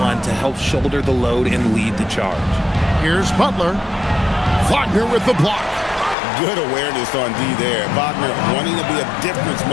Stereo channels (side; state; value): right; drops out; at 6.2 s